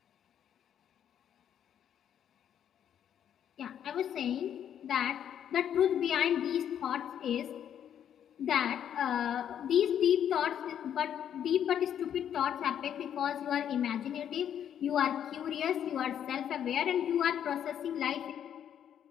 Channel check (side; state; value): right; quieter; 9.5 dB